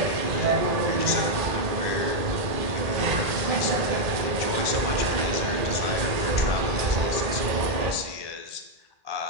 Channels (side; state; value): left; late; 1.8 ms